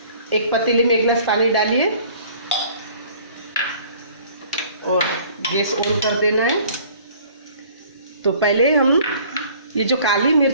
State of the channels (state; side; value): inverted; both; correlation -0.52